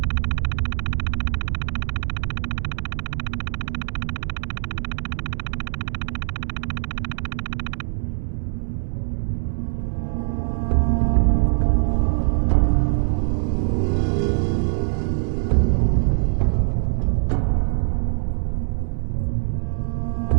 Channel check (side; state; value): left; silent; 63 dB below the other